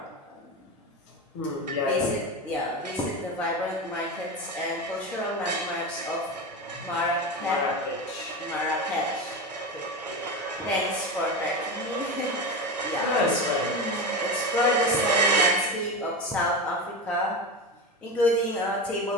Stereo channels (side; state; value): both; normal; correlation 0.21